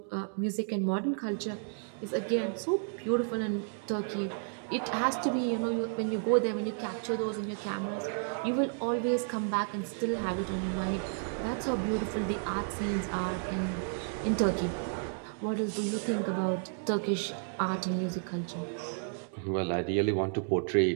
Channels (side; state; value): left; silent; 56 dB below the other